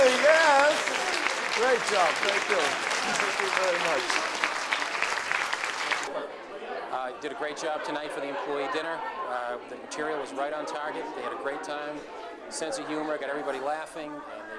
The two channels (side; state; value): both; identical; correlation 1.00